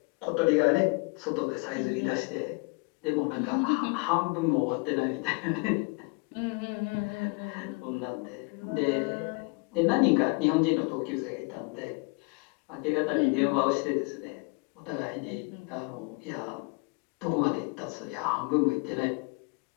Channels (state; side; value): quieter; right; 31.1 dB